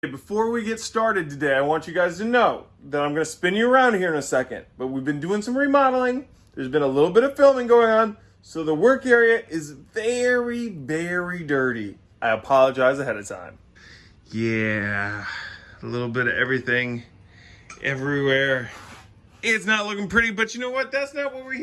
Before we get started today, I want you guys to know that I'm going to spin you around here in a second, but we've been doing some remodeling. There's been a little bit of filming going on, so the work area is very, very dirty. I apologize ahead of time. Yeah, a little bit of everything everywhere. It's not looking pretty, but you know what? That's not what we're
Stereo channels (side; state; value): both; identical; correlation 1.00